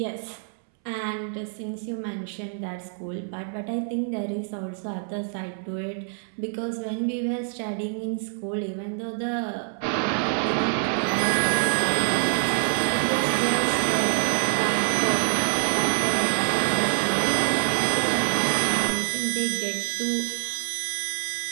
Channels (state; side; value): silent; left; 61 dB below the other